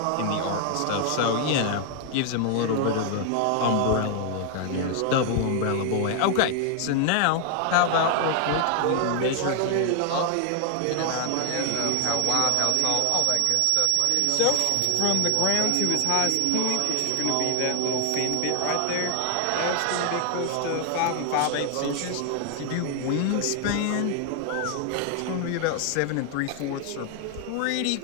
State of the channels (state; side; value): different; both; correlation 0.00